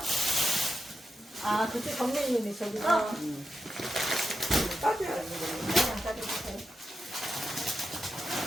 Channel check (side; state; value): both; normal; correlation 0.87